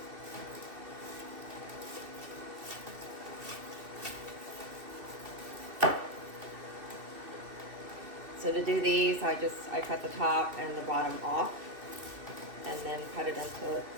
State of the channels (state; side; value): late; left; 2.7 ms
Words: So to do these, I cut the top and the bottom off, and then cut it into,